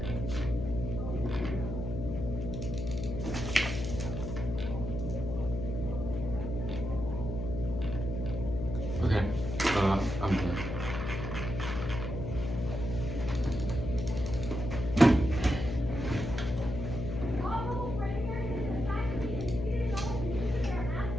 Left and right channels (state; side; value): noise; left; hum, 4 dB below the sound